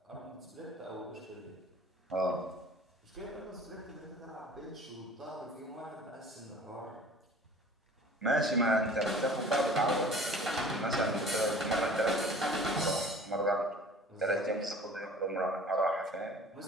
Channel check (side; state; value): both; normal; correlation 0.46